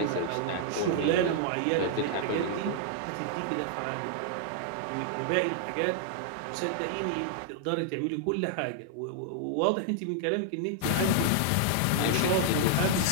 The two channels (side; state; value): both; different; correlation -0.01